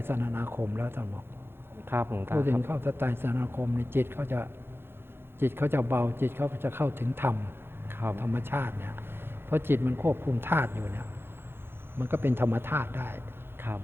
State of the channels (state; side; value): late; left; 0.11 ms